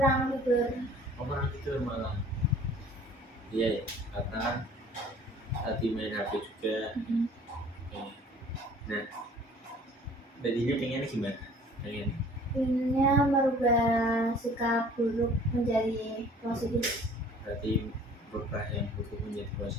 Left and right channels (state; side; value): normal; both; correlation 0.51